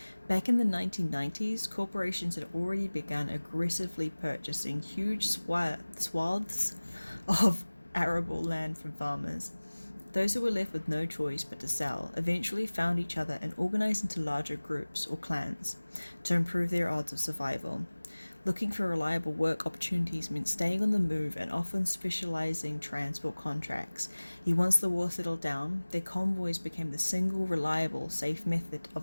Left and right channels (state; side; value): inverted; both; correlation -1.00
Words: Back in the 1990s, corporations had already begun aggressively purchasing huge swaths of arable land from farmers. Those who were left with no choice but to sell eventually found each other and organized into larger groups or clans to improve their odds of survival. Looking for reliable work opportunities meant staying on the move and often specializing transport contracts. Yet once the war settled down, their convoys became the single reliable, safe method